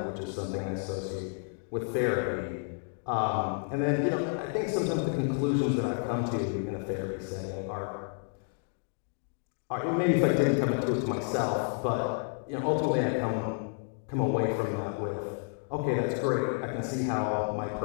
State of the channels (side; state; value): right; silent; 57 dB below the other